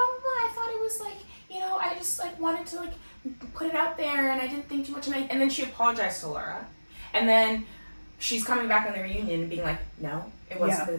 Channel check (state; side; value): inverted; both; correlation -1.00